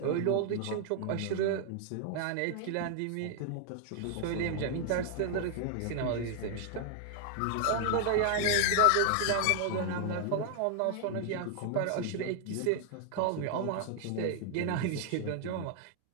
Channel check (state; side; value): different; both; correlation 0.00